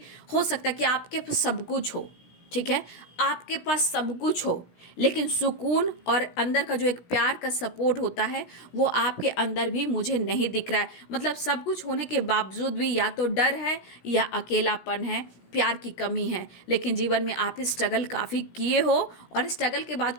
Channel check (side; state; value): right; late; 17 ms